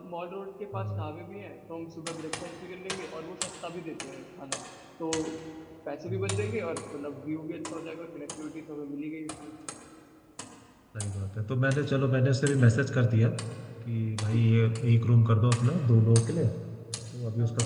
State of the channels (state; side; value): identical; both; correlation 1.00